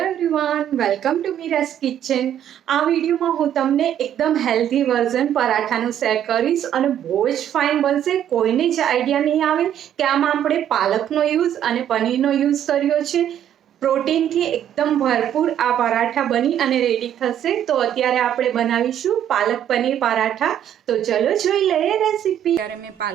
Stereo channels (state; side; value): quieter; left; 10.3 dB